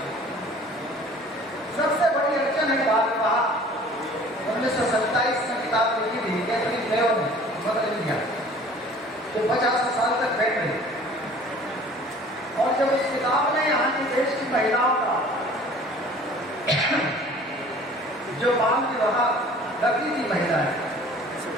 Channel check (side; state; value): both; normal; correlation 0.48